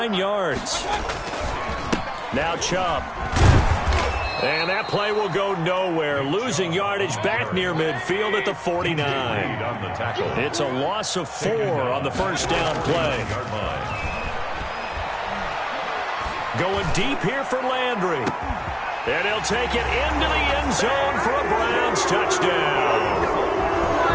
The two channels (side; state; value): both; identical; correlation 1.00